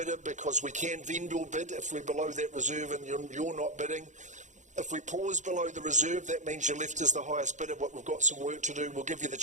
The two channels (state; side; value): late; left; 0.35 ms